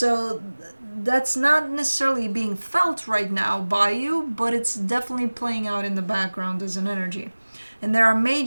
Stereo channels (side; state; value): both; inverted; correlation -1.00